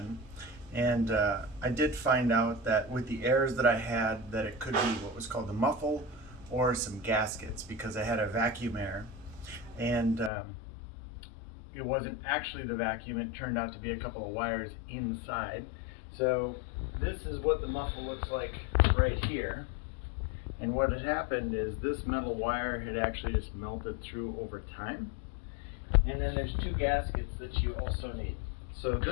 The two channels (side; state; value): right; drops out; at 10.3 s